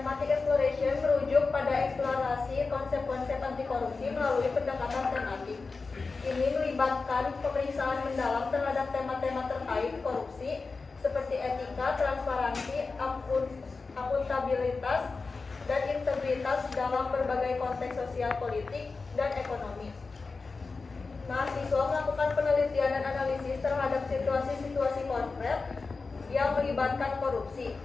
exploration merujuk pada eksplorasi konsep-konsep anti korupsi melalui pendekatan tematik. Ini melibatkan pemeriksaan mendalam terhadap tema-tema terkait korupsi seperti etika, transparansi, akuntabilitas, dan integritas dalam berbagai konteks sosial, politik, dan ekonomi. Mahasiswa melakukan penelitian dan analisis terhadap situasi-situasi konkret yang melibatkan korupsi,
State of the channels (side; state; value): right; quieter; 4.2 dB